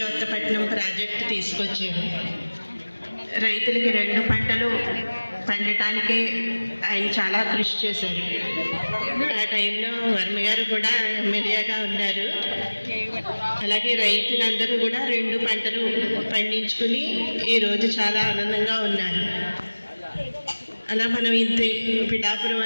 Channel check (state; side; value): inverted; both; correlation -1.00